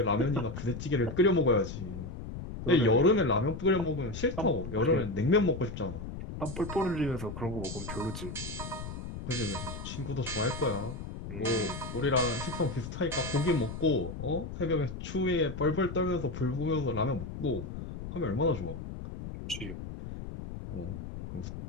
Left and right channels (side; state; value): left; noise; rumble, 8 dB below the sound